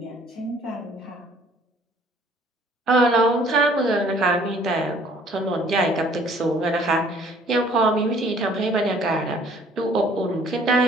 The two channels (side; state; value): both; normal; correlation 0.57